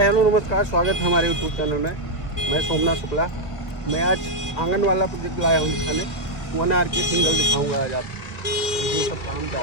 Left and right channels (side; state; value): right; late; 1.9 ms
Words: hello नमस्कार, स्वागत है हमारे यूट्यूब चैनल में। मैं सोमनाथ शुक्ला। मैं आज आंगन वाला प्रोजेक्ट लाया हूँ दिखाने। 1 आर के सिंगल दिखाऊंगा आज आपको। देखिए सब काम